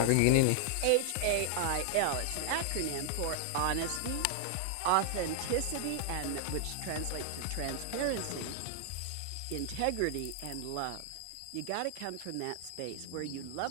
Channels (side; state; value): both; different; correlation 0.00